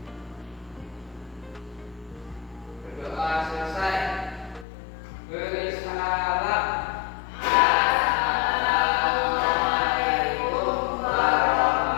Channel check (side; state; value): right; drops out; at 4.7 s